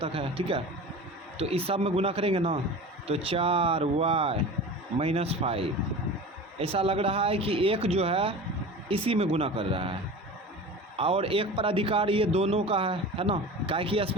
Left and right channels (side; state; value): both; normal; correlation 0.34